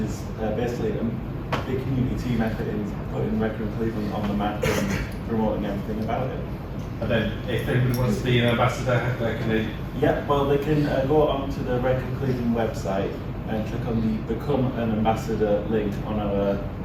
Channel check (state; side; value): identical; both; correlation 1.00